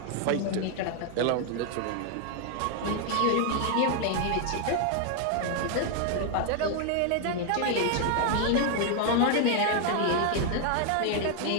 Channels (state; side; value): different; both; correlation 0.00